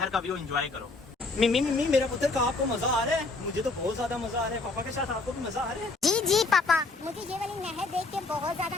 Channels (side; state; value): right; quieter; 3.5 dB